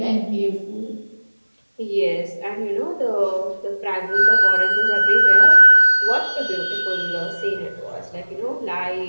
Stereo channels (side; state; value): both; inverted; correlation -1.00